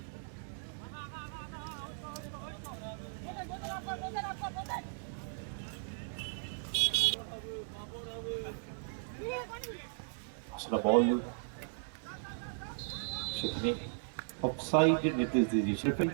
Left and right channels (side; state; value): left; silent; digital silence